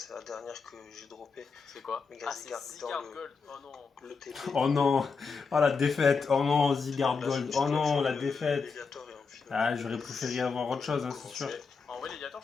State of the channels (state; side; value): quieter; right; 5.1 dB